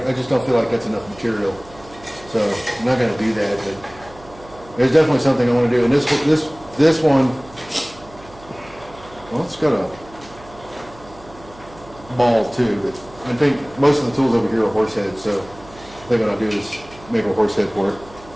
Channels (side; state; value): right; noise; hum, 21 dB below the sound